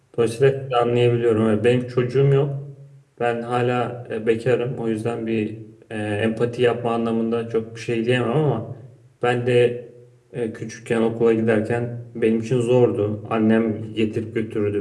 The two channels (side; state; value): both; identical; correlation 1.00